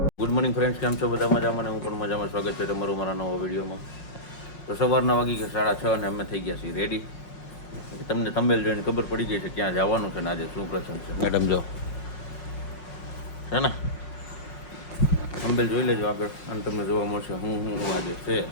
ગુડ મોર્નિંગ ફ્રેન્ડ્સ, કેમ છો બધા મજામાં? હું પણ મજામાં. સ્વાગત છે તમારું મારા નવા વિડીયોમાં. તો સવારના વાગી ગયા 6:30 અને અમે થઈ ગયા છીએ રેડી. તમને થંબનેલ જોઈને ખબર પડી ગઈ છે ક્યાં જવાનું છે ને આજે શું પ્રસંગ છે. મેડમ જો છે ને, થંબનેલ જોઈ લેજો આગળ અને તમને જોવા મળશે હું આજે છે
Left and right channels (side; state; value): right; late; 5.5 ms